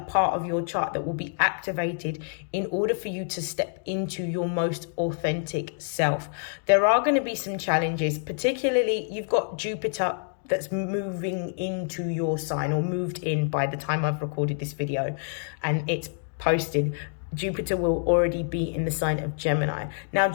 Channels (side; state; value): right; silent; digital silence